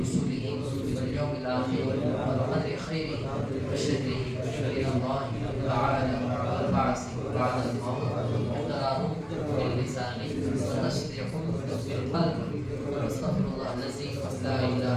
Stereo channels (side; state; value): both; identical; correlation 1.00